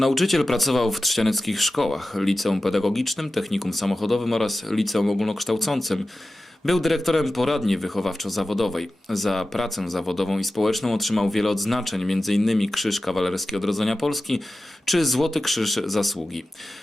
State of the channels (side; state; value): both; normal; correlation 0.94